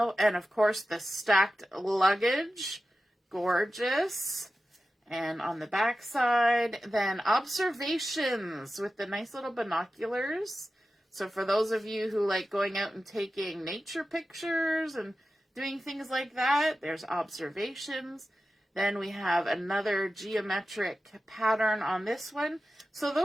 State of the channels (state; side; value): normal; both; correlation 0.93